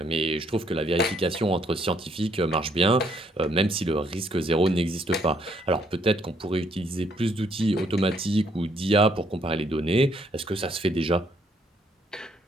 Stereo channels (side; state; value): both; normal; correlation 0.69